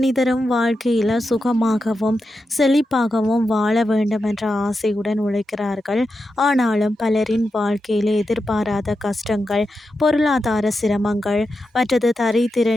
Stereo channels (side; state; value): both; normal; correlation 0.89